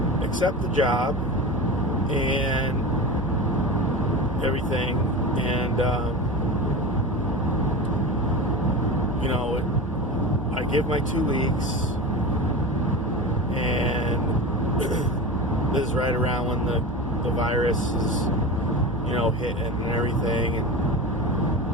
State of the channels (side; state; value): both; normal; correlation 0.27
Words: accept the job and everything, and I give my 2 weeks, and this is right around when the virus is hitting and everything, and